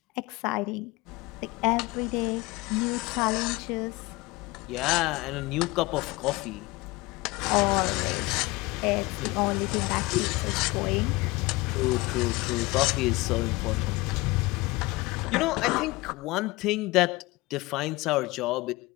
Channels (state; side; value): quieter; right; 22.3 dB